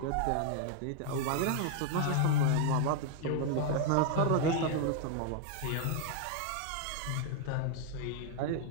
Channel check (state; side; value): different; both; correlation 0.00